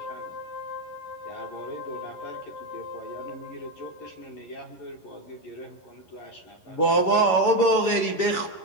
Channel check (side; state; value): right; late; 11 ms